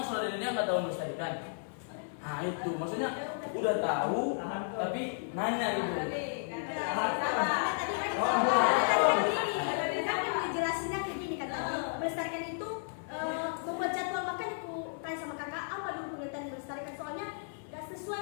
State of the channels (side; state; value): right; silent; 56 dB below the other